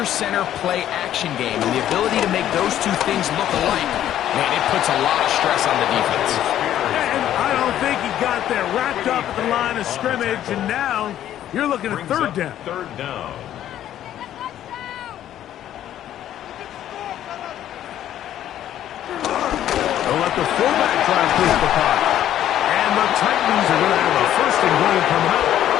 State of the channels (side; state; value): right; quieter; 11.6 dB